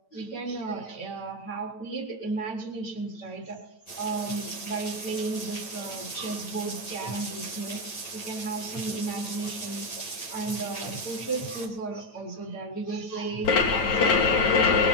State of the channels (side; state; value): right; late; 9.0 ms